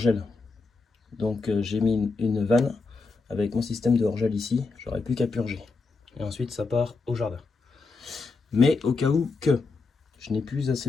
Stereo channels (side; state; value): right; quieter; 4.1 dB